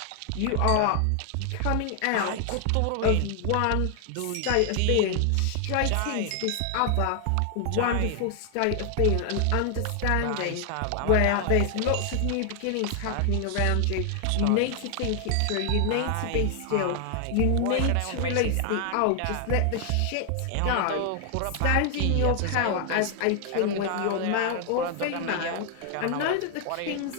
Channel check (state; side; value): different; both; correlation 0.00